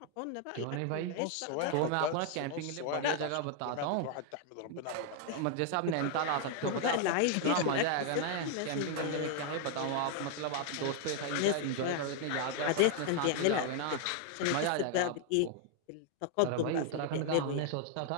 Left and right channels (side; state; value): both; different; correlation 0.00